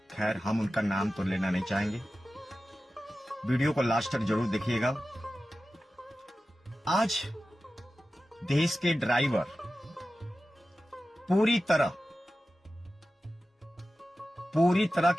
खैर, हम उनका नाम तो लेना नहीं चाहेंगे। वीडियो को लास्ट तक जरूर देखिएगा। आज देश के ड्राइवर पूरी तरह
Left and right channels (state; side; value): normal; both; correlation 0.94